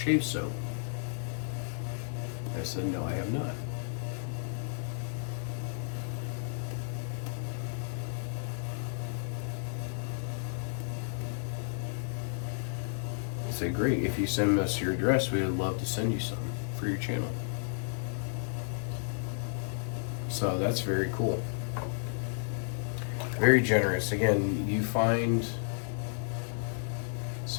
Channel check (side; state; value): right; silent; digital silence